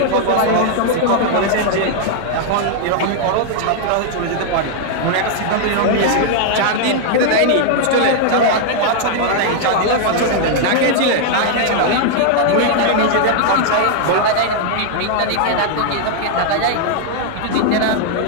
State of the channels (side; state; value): both; different; correlation -0.01